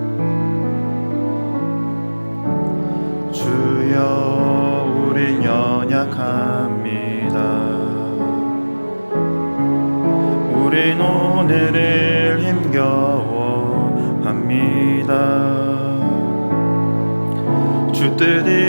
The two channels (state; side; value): inverted; both; correlation -1.00